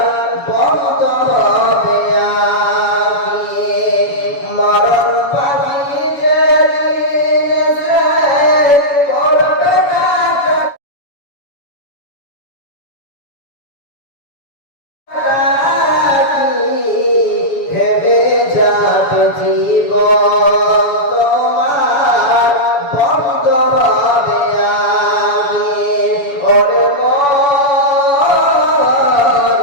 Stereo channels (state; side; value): late; right; 7.0 ms